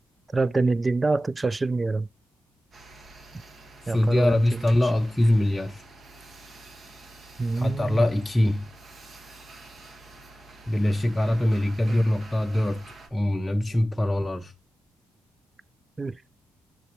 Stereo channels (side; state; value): both; normal; correlation 0.97